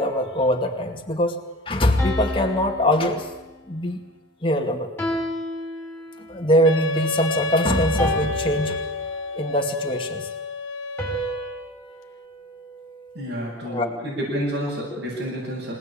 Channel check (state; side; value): normal; both; correlation 0.36